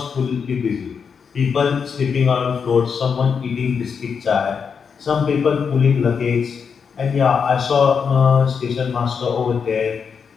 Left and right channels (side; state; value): right; quieter; 6.3 dB